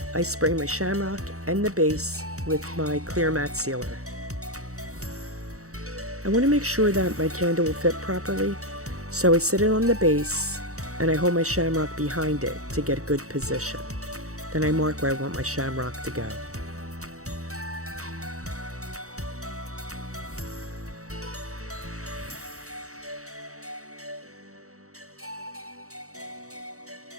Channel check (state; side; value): late; left; 0.65 ms